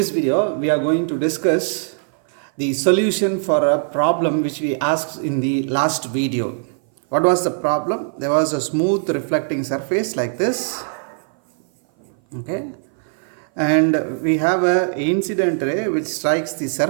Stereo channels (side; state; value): left; silent; 58 dB below the other